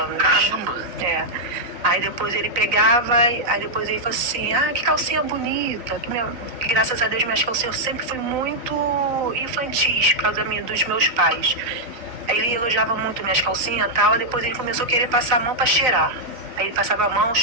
Caramba! É. Aí depois ele pegava, aí depois ele falou assim, que calcinha bonita. Que graças a Deus minhas calcinhas sempre fui muito infantis por causa dos meus pais. Aí ele elogiava muito minhas calcinhas e tal, aí depois ele começou a querer passar a mão para cheirar. Aí ele passava a mão,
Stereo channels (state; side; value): late; left; 3.9 ms